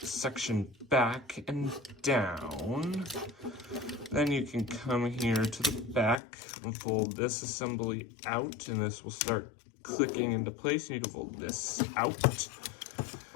back and down. Then you can come here to the back and fold this assembly out, and this will start clicking into place, and you can fold this out.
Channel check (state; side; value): drops out; right; at 6.2 s